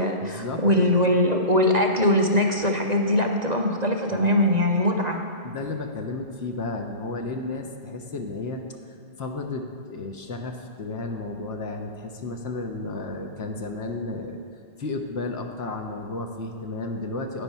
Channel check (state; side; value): late; left; 1.9 ms